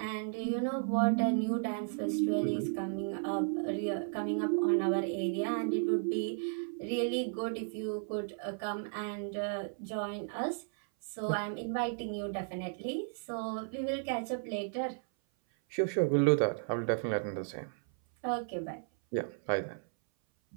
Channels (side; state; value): left; silent; 55 dB below the other